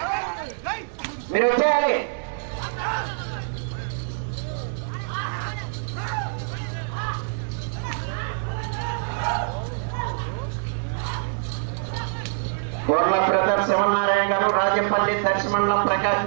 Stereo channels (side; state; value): left; silent; 57 dB below the other